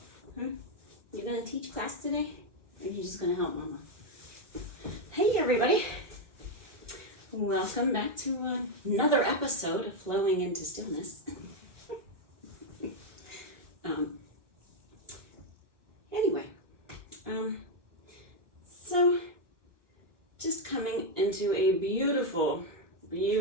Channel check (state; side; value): late; left; 1.1 ms